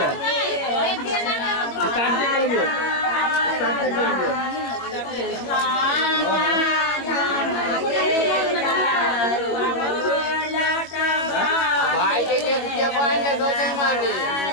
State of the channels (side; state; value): right; late; 22 ms